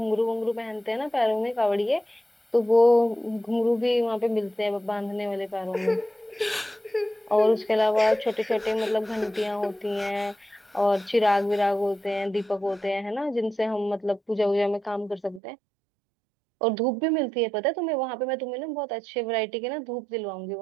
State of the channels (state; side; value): drops out; left; at 15.4 s